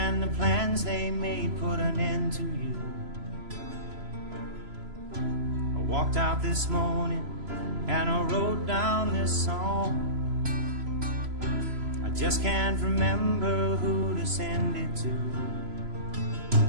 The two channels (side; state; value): left; late; 3.0 ms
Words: the plans they made put an end to you. I walked out this morning and I wrote down this song. I just can't remember who to send it to.